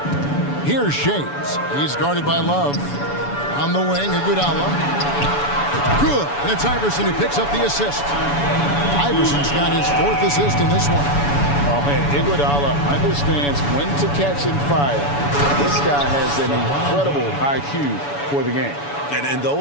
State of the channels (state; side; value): late; right; 7.0 ms